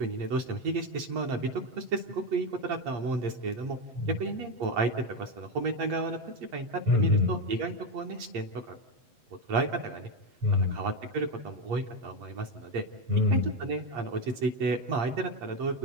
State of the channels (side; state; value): left; late; 8.6 ms